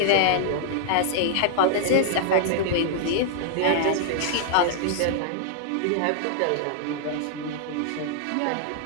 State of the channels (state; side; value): different; both; correlation 0.00